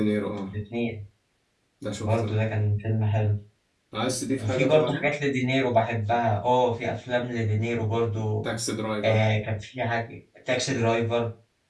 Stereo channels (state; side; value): identical; both; correlation 1.00